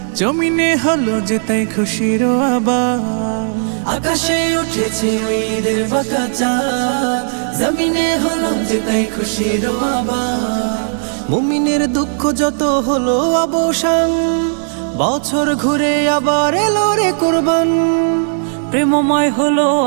জমিনে হলো যে তাই খুশির আবার। আকাশে উঠেছে ওই ঈদের বাঁকা চাঁদ, জমিনে হলো যে তাই খুশির আবার। মুমিনের দুঃখ যত হলো অবসান, বছর ঘুরে আবার এলো রে কুরবান। প্রেমময় হলো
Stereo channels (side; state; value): left; silent; digital silence